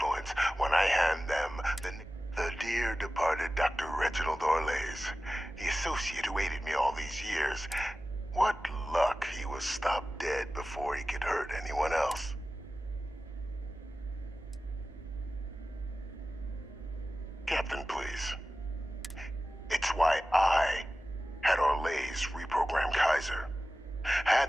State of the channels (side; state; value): both; normal; correlation 0.95